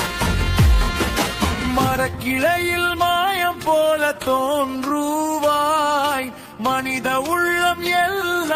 மரக்கிளையில் மாயம் போல தோன்றுவாய், மனித உள்ளம்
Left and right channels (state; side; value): identical; both; correlation 1.00